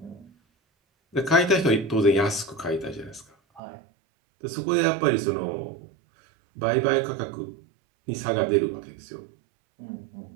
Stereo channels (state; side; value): drops out; left; at 3.6 s